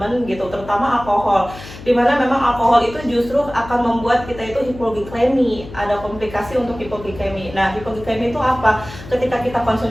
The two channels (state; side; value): noise; left; hum, 15 dB below the sound